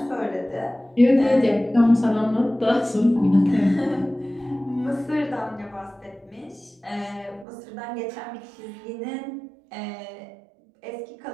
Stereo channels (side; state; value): left; drops out; at 7.5 s